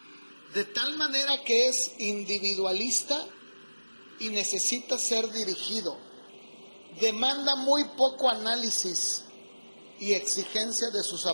de tal manera que es individualista y necesita ser dirigido. Demanda muy poco análisis y exigencia de sus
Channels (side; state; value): both; inverted; correlation -1.00